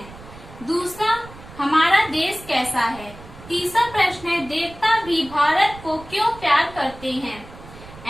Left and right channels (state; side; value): noise; right; rumble, 18 dB below the sound